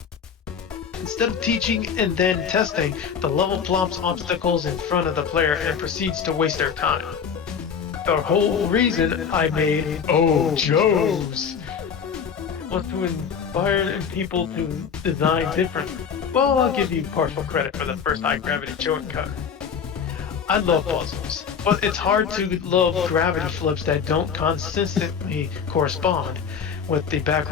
Instead of teaching and then testing, the level plops obstacles in front of the player and proceeds to waste their time. The whole reason I made Oh Joe's was to inspire people to design differently. Well, I'll give you partial credit for the first high gravity Joe cut. I love puzzles, but it's hard to love gravity flips that don't consistently correspond with the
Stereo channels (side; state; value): right; quieter; 6.9 dB